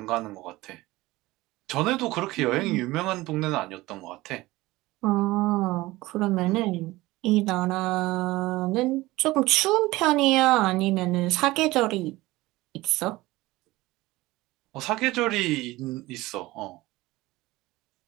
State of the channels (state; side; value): quieter; left; 19.2 dB